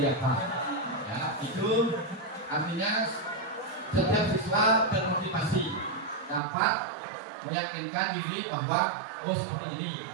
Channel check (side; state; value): left; drops out; at 6.4 s